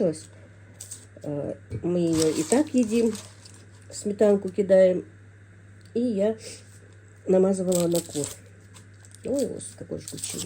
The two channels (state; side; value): identical; both; correlation 1.00